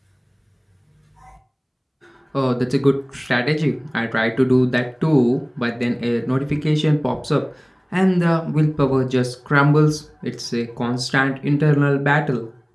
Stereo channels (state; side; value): identical; both; correlation 1.00